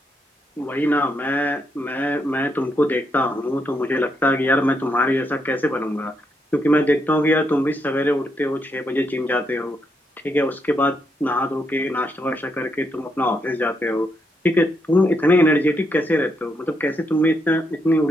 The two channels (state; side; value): normal; both; correlation 0.79